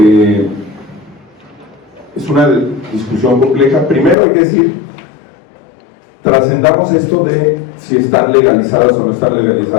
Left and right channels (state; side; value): drops out; right; at 4.2 s